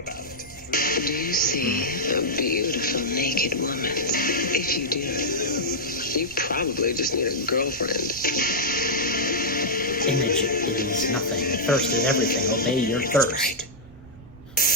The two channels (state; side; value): noise; right; rumble, 20 dB below the sound